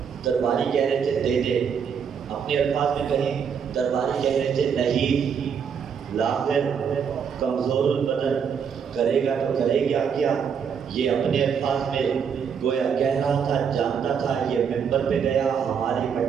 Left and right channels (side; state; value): left; quieter; 7.1 dB